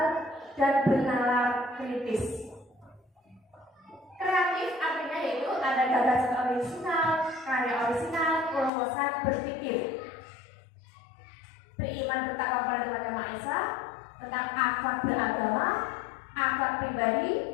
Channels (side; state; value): right; drops out; at 8.7 s